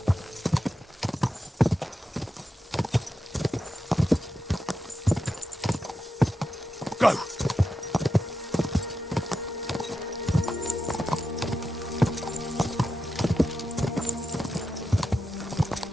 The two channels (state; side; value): normal; both; correlation 0.89